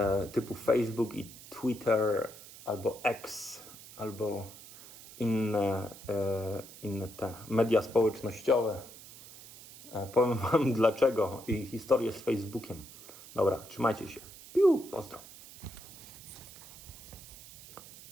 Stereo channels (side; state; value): right; noise; hiss, 17 dB below the sound